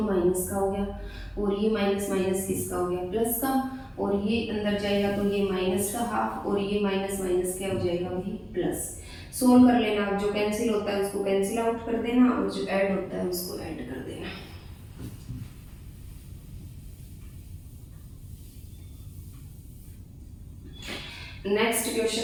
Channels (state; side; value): identical; both; correlation 1.00